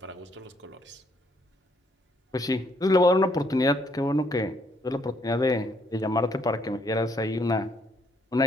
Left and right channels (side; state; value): both; normal; correlation 0.70